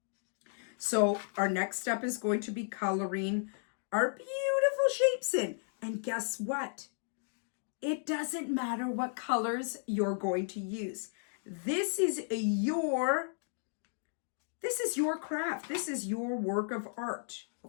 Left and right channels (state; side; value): silent; right; digital silence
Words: So our next step is going to be coloring our beautiful shapes in. And guess what? It doesn't matter what colors you're going to use. This is your craft. This is your work of art,